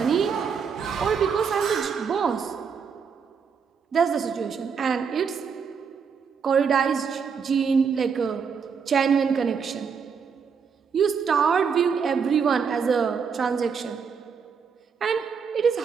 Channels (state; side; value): quieter; left; 6.2 dB